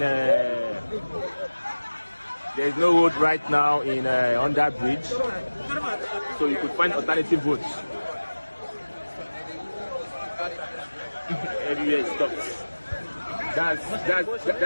is no road right now in on that bridge, so you could find alternative routes. Everywhere is stopped.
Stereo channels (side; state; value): both; inverted; correlation -1.00